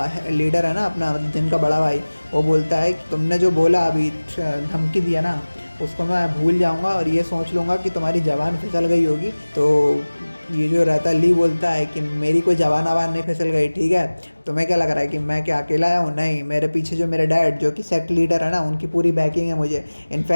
लीडर है ना अपना, मतलब जिनका बड़ा भाई, वो बोलता है कि तुमने जो बोला अभी धमकी दिया ना उसको मैं भूल जाऊँगा और ये सोच लूँगा कि तुम्हारी ज़बान फिसल गई होगी। तो ये जो रहता है ली बोलता है कि मेरी कोई जवान आवान नहीं फिसल गई, ठीक है। तुम्हें क्या लग रहा है कि मैं क्या अकेला आया हूँ? नहीं, मेरे पीछे जो मेरे डैड जो कि सेक्ट लीडर है ना उनकी पूरी बैकिंग है मुझे।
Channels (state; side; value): inverted; both; correlation -1.00